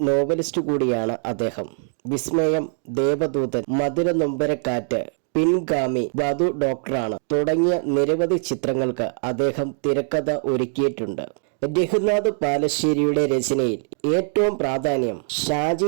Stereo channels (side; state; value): left; silent; digital silence